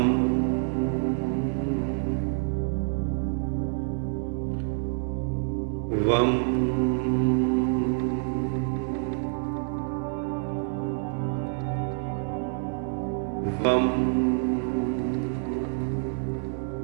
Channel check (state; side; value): silent; left; 60 dB below the other